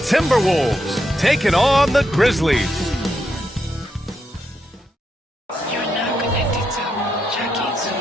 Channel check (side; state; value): both; normal; correlation 0.82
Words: Timberwolves taking on the Grizzlies.